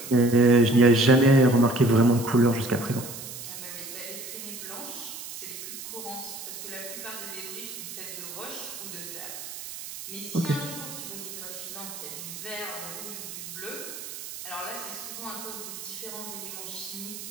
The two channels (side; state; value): right; noise; hiss, 10 dB below the sound